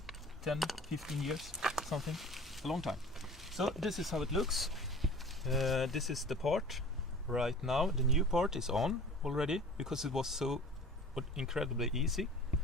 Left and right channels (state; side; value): normal; both; correlation 0.42